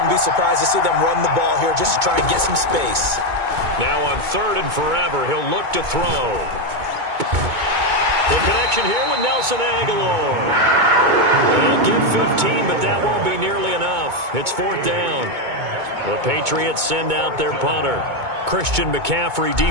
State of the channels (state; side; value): late; left; 2.2 ms